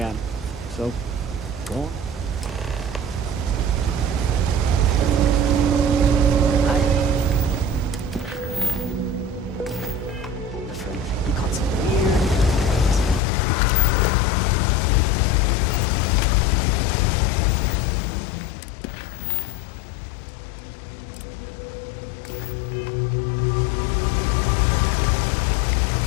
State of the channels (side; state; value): right; drops out; at 13.2 s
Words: So, go on.